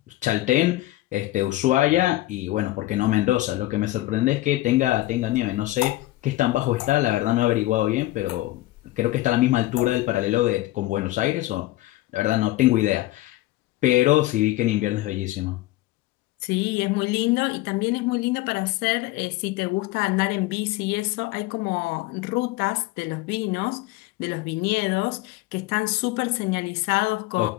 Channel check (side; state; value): right; quieter; 17.2 dB